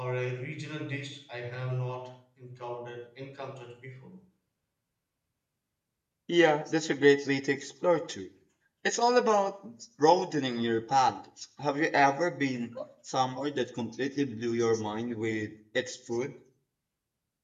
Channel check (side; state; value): both; identical; correlation 1.00